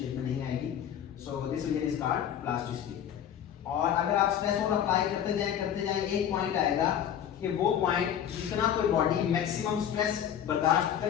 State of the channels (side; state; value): right; quieter; 9.5 dB